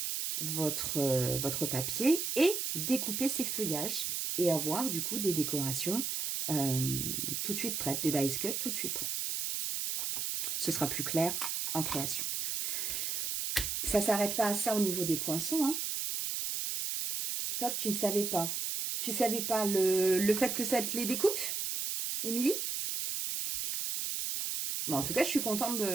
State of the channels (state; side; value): noise; right; hiss, 1 dB below the sound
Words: votre papier et découper ces feuillages et avoir du coup des décorations tout de suite prêtes, des dice cut tout de suite prêts. Ce sera plus clair en création. Ça ne s'arrête pas à ça au niveau des poinçons. Top, tu ne savais pas. Tu ne savais pas le fait que ça te les découpe, Émilie? Bon, en tout cas, je suis contente